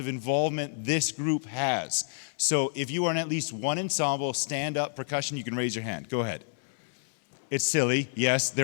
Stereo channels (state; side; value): silent; right; 59 dB below the other